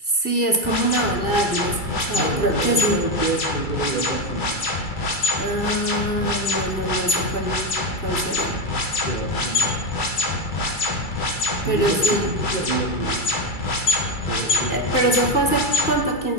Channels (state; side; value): late; right; 2.3 ms